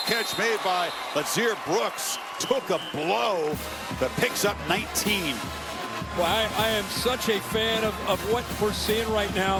catch made by Lazir Brooks. Took a blow that picks up 19. Well, I am such a fan of what we're seeing right now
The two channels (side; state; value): both; identical; correlation 1.00